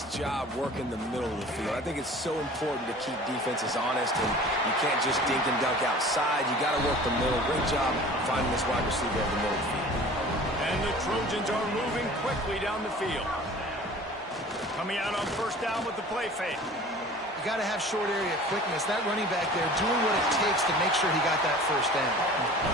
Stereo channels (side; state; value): both; normal; correlation 0.44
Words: job working the middle of the field. I think it's so important to keep defenses honest, and you can't just dink and dunk outside. You got to work the middle. Great job finding this wide receiver over the middle of the field. And the Trojans are moving quickly down the field. Coming out on first down with the play fake. You got to have short area quickness. That running back there doing what it takes to make sure he got that first down.